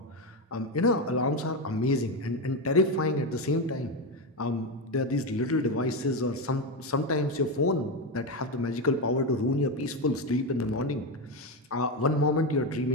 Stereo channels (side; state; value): both; normal; correlation 0.12